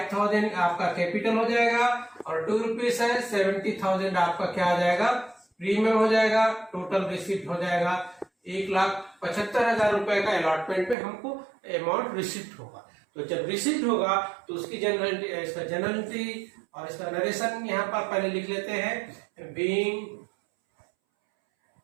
आपका कैपिटल हो जाएगा, और 2 रुपीज है, 70,000 आपका क्या आ जाएगा, प्रीमियम हो जाएगा। टोटल रिसिप्ट हो जाएगा 1,75,000 रुपए का अलॉटमेंट पे हमको अमाउंट रिसिप्ट होगा। तो जब रिसिप्ट होगा तो उसकी जनरलिटी और इसका नरेशन यहां पर पहले लिख लेते हैं, being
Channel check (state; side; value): drops out; left; at 11.0 s